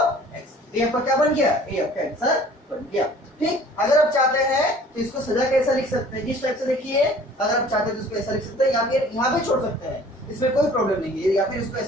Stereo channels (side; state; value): both; normal; correlation 0.50